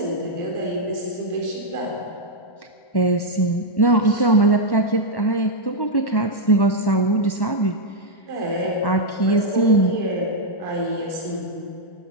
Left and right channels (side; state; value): right; late; 1.1 ms